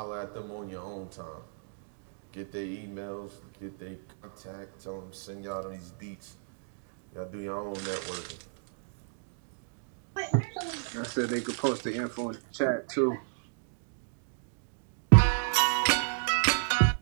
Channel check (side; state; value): left; silent; digital silence